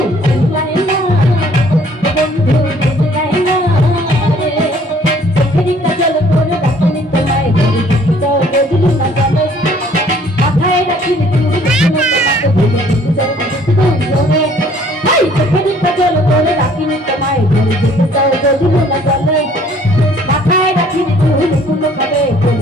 চিল্লায় না রে, ও বন্ধু বুঝলায় না রে। চোখেরই কাজল করে রাখিনি তোমায়, যাও বদলু না জানো, মাথায় রাখিনি তুমি তোমাকে ভুলে যেতে চাও রে। ভাই চোখেরই কাজল করে রাখিনি তোমায়, যেতে চাও বদলু না জানো, মাথায় রাখিনি তুমি কোনো খাবে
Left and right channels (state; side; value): normal; both; correlation 0.58